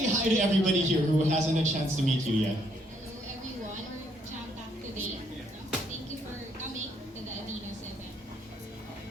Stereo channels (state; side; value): normal; both; correlation 0.70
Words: hi to everybody here who hasn't had a chance to meet you yet? Hello everyone, we're jam-packed today. Thank you for coming to the Aveeno's